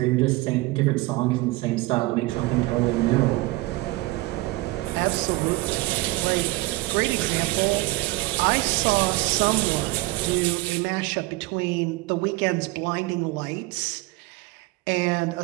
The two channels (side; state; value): left; quieter; 20.9 dB